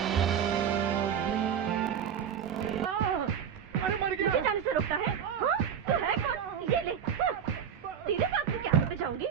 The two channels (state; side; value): quieter; left; 8.2 dB